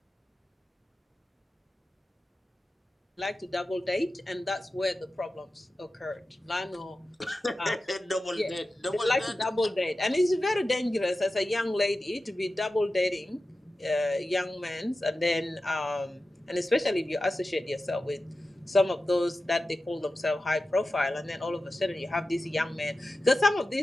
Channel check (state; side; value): normal; both; correlation 0.93